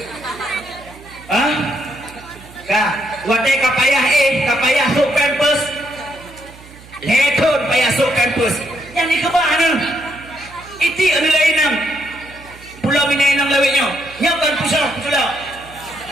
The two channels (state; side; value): noise; right; hum, 21 dB below the sound